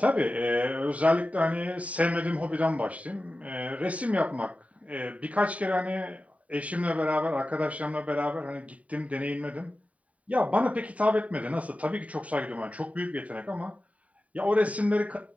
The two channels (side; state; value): left; late; 0.068 ms